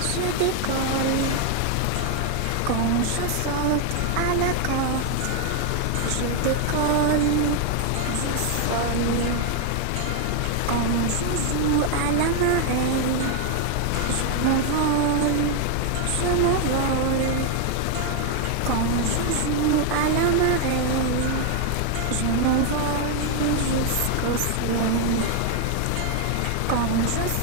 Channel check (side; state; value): both; different; correlation 0.01